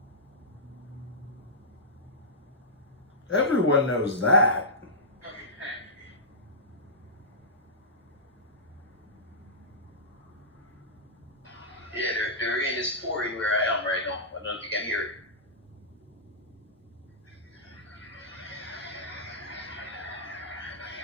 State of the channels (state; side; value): normal; both; correlation -0.14